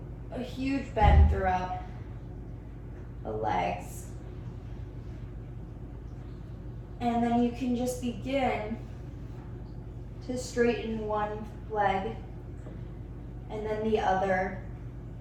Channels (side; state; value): both; identical; correlation 1.00